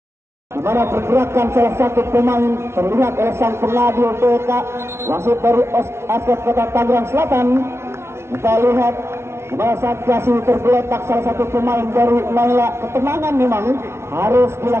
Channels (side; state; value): left; late; 0.13 ms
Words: Di mana pergerakan salah satu pemain terlihat oleh sang pengadil BK wasit dari Askot Kota Tangerang Selatan. Kita lihat di mana saat kasih tergeletak salah satu pemain dari Naila. Ketenangan memang harus